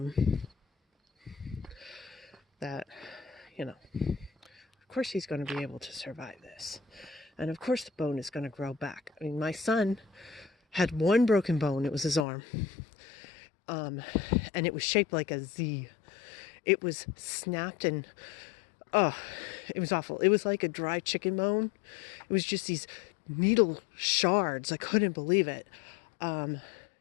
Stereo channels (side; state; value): right; drops out; at 12.2 s